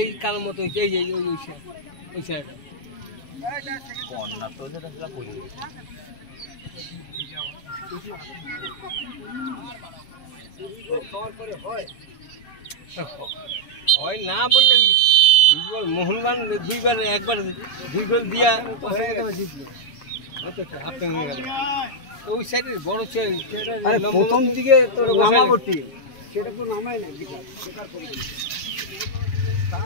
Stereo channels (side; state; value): right; late; 7.3 ms